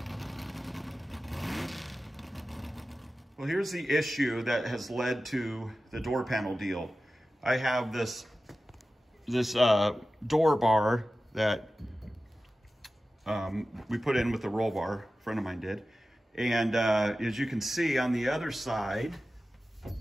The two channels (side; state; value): both; normal; correlation 0.95